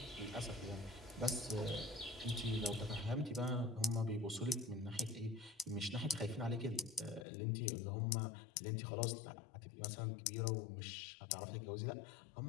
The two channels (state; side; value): drops out; right; at 7.2 s